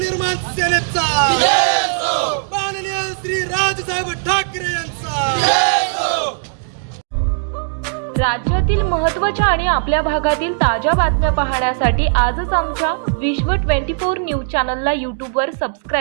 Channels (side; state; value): left; silent; digital silence